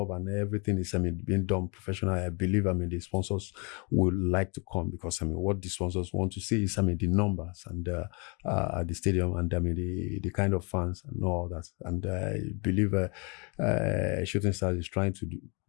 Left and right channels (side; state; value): right; quieter; 33.3 dB